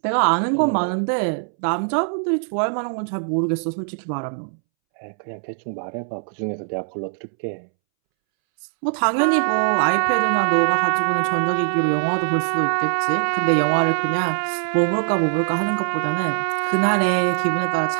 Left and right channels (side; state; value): left; silent; 65 dB below the other